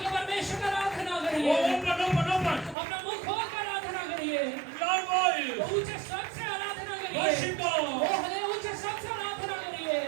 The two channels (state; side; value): drops out; left; at 2.8 s